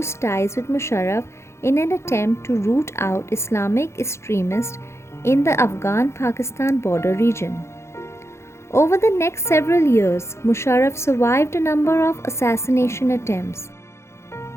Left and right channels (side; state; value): right; late; 0.13 ms